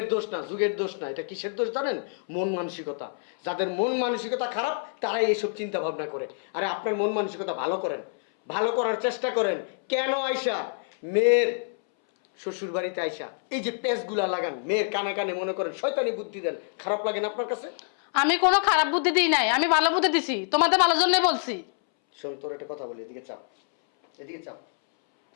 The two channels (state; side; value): silent; right; 60 dB below the other